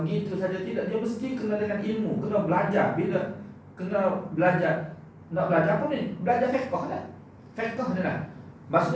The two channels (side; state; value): both; identical; correlation 1.00